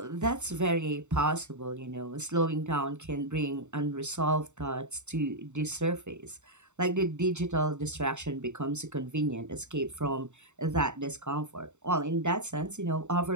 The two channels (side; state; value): left; late; 0.84 ms